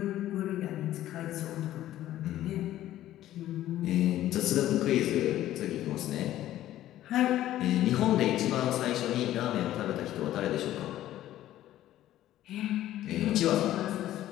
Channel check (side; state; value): right; quieter; 13.5 dB